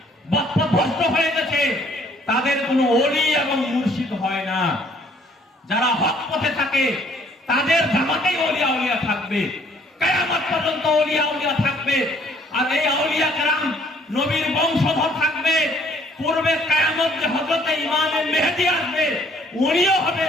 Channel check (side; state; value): both; normal; correlation 0.61